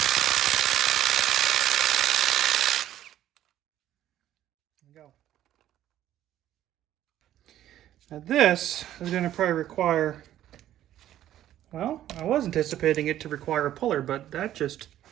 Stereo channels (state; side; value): quieter; left; 12.4 dB